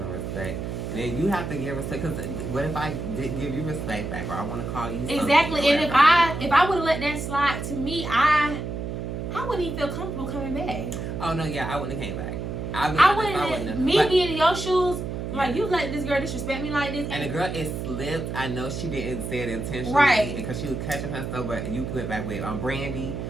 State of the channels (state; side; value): noise; right; hum, 5 dB below the sound